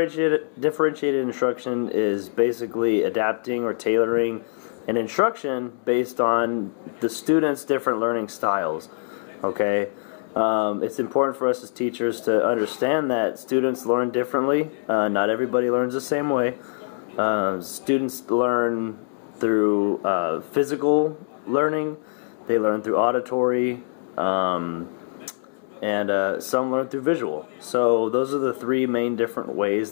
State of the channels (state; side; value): silent; right; digital silence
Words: instruction is basically adapting or tailoring an instruction based on the student's different learning styles. Okay, it's important for us as teachers to understand that students learn differently. Not everybody learns the same way. Students learn through physical learning. They learn through auditory. And some learn through visual. So those are the three main different